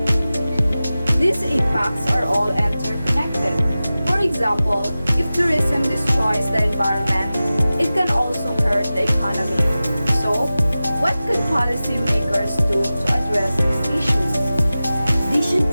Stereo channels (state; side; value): inverted; both; correlation -0.96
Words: These impacts are all interconnected. For example, if tourism destroys the environment, it can also hurt the economy. So, what could policymakers do to address these issues? They should